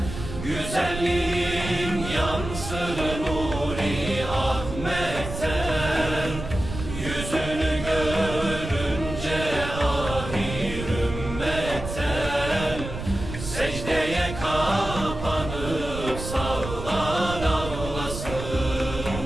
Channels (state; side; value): noise; right; rumble, 8 dB below the sound